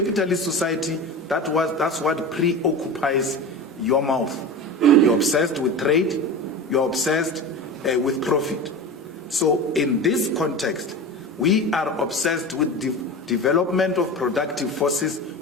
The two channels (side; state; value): both; normal; correlation 0.29